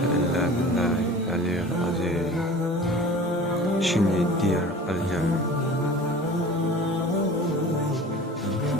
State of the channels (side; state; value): both; normal; correlation 0.41